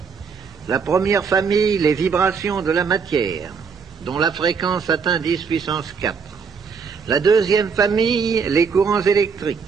la première famille, les vibrations de la matière, dont la fréquence atteint 10 puissance 4. La deuxième famille, les courants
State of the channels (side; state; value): left; quieter; 5.7 dB